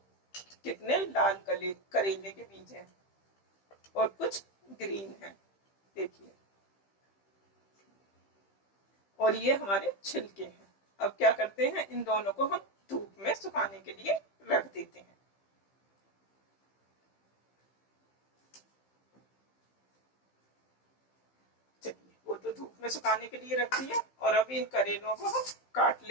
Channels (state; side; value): late; right; 15 ms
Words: कितने लाल करेले के बीज हैं और कुछ ग्रीन है। देखिए, और ये हमारे छिलके हैं। अब क्या करते हैं, इन दोनों को हम धूप में सुखाने के लिए रख देते हैं। चलिए, वो तो धूप में सुखाने के लिए रख दिया, और अब इन करेलों को हम काट